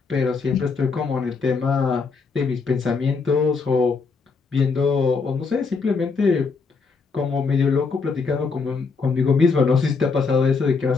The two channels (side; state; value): right; quieter; 4.7 dB